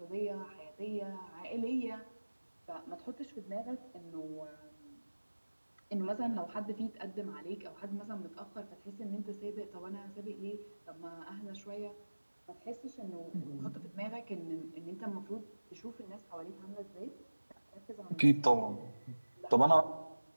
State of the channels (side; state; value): both; inverted; correlation -1.00